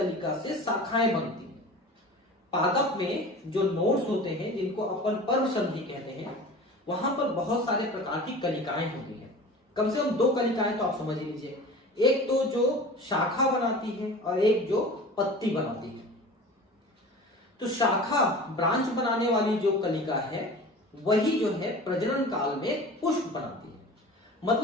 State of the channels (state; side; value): normal; both; correlation 0.37